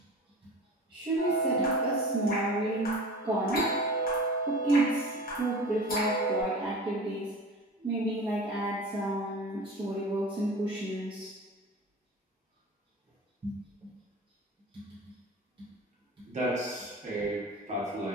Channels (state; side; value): normal; both; correlation 0.36